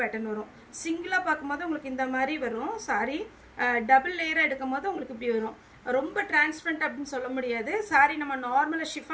பேட்டர்ன் வரும். சிங்கிளாக பார்க்கும்போது உங்களுக்கு இந்த மாதிரி வரும். சாரி டபுள் லேயராக எடுக்கும் போது உங்களுக்கு இப்படி வரும். ரொம்ப டிரான்ஸ்பரண்ட் அப்படின்னு சொல்ல முடியாது. சாரி நம்ம நார்மலாக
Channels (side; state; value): both; identical; correlation 1.00